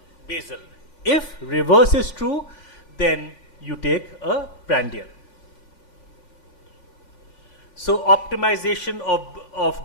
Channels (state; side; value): late; right; 5.5 ms